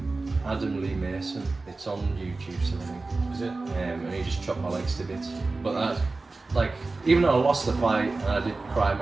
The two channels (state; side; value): quieter; left; 3.5 dB